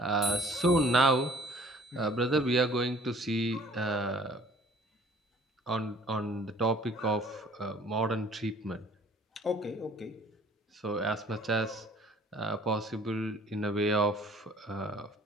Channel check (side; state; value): both; normal; correlation 0.54